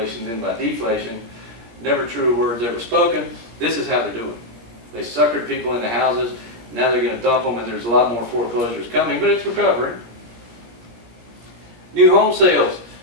then by deflation. Never true words ever spoken. This is how they're doing. They suckered people into houses. Now they're going to dump them, and there's a lot more foreclosures coming, but it's recovering. New home sales.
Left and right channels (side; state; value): left; late; 17 ms